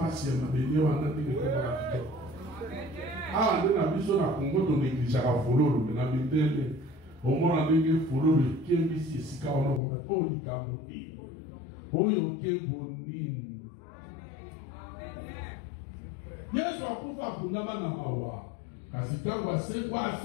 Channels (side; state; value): right; drops out; at 9.8 s